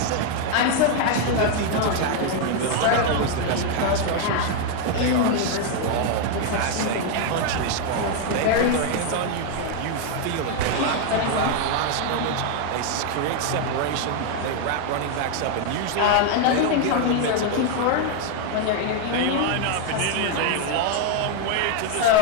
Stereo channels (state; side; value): different; both; correlation 0.01